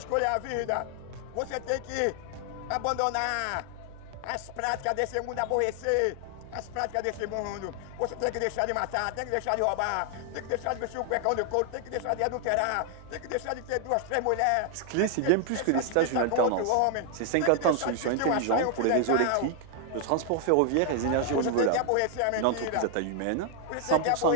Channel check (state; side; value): different; both; correlation 0.00